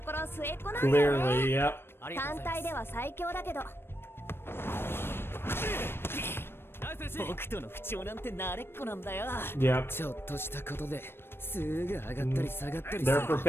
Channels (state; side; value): late; right; 0.11 ms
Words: ころ末っ子なんだよね。 Clearly, yep. 単体では最強だけど。僕との不調なんて慣れっこなんだよ。 Yep. ちょっとしたことですぐ上がったり下がったり。 They're